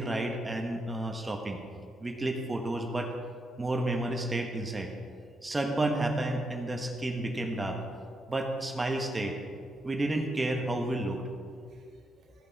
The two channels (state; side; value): normal; both; correlation 0.82